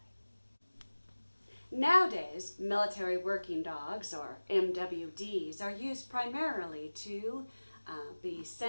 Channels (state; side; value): inverted; both; correlation -1.00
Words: Nowadays, military working dogs, or MWDs, are used primarily to be